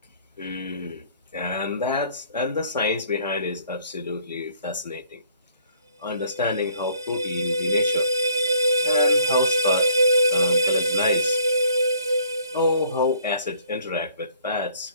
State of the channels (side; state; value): both; inverted; correlation -0.61